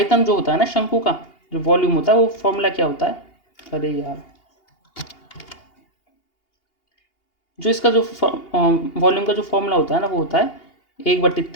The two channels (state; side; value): late; right; 2.8 ms